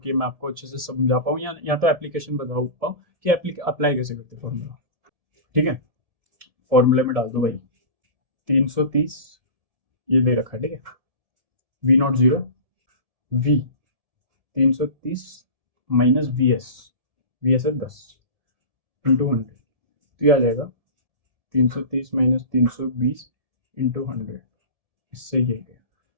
कि मैं आपको अच्छे से समझा पाऊँ, या तो एप्लीकेशन बता पाऊँ कि अप्लाई कैसे करते हैं फॉर्मूला, ठीक है। फॉर्मूले में डाल दो भाई, 330 ये दे रखा है, ठीक है, V naught zero, V 330 minus V S है 10 इंटू 100, तो ये आ जाएगा 330 माइनस 320 इंटू 100, इससे ये गया।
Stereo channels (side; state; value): left; late; 1.7 ms